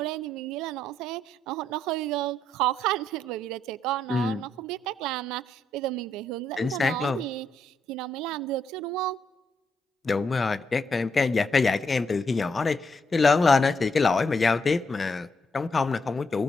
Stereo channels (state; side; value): normal; both; correlation 0.77